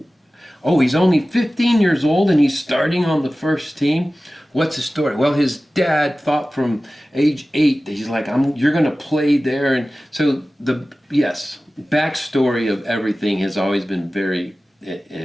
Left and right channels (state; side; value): normal; both; correlation 0.96